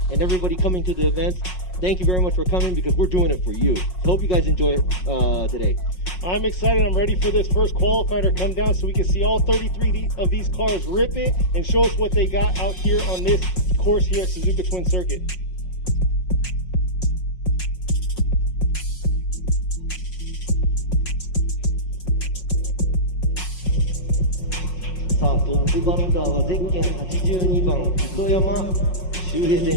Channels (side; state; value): right; late; 5.5 ms